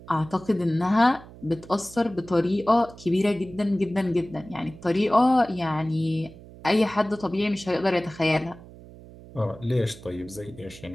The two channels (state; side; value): noise; right; hum, 19 dB below the sound